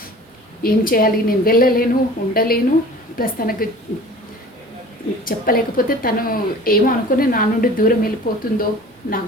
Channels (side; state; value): both; normal; correlation 0.44